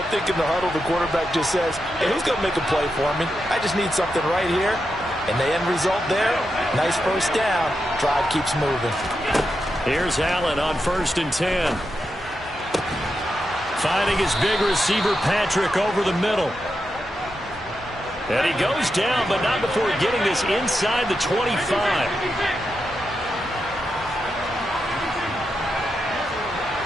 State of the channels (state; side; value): normal; both; correlation 0.87